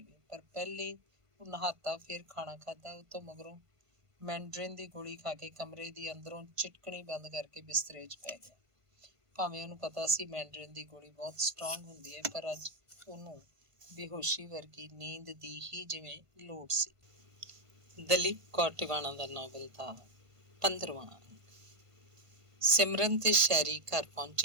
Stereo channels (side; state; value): left; late; 1.5 ms